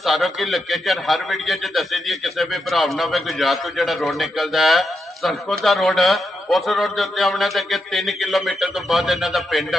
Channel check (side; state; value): both; normal; correlation 0.85